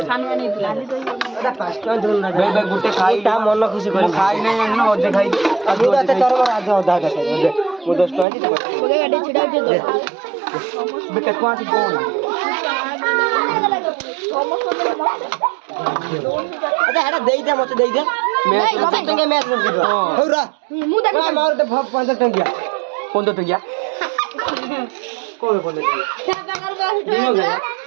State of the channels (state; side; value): drops out; left; at 8.2 s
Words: सानवानी लाली दई एडा 5 टका दोन ना बे गुटे खाईटा मन खुशी कर खाई नै न ओदे खाई अजू तो तोर आज आधा का दे मु 10 टका दी ओगे गाडी छिडा दे बेटा कोन कोन अरे एडा देई दे मते देई दे मैच 15 टका मैच कर दे होरा मु देख मार दे 15 टका 15 टका कोई बोले क्या कर दिनो गया